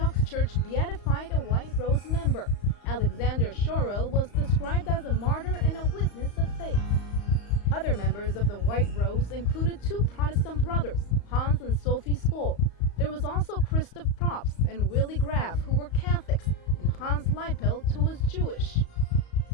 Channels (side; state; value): right; late; 35 ms